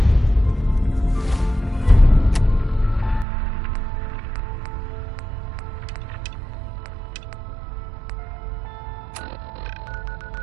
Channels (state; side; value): drops out; left; at 3.2 s